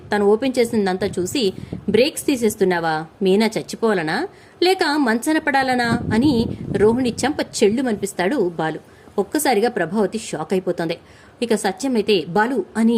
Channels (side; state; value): both; identical; correlation 1.00